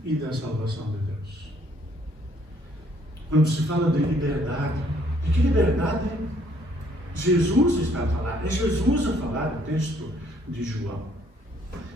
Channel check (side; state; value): both; normal; correlation 0.65